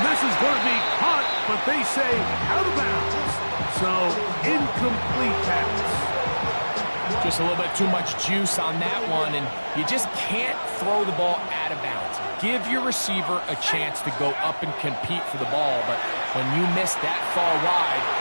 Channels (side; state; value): both; inverted; correlation -1.00